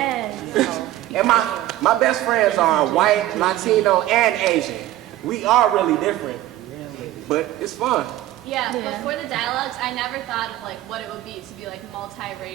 Yes. And my best friends are white, Latino, and Asian. We are really different, but it's fun. Yeah, before the dialogues, I never thought of what it would be to be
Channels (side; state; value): left; quieter; 14.8 dB